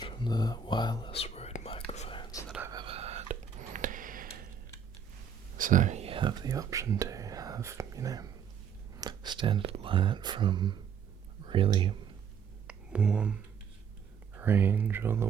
from the wireless Rode microphones that I've ever had. So you have the option to have, standard light from really warm range all the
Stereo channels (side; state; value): left; quieter; 7.0 dB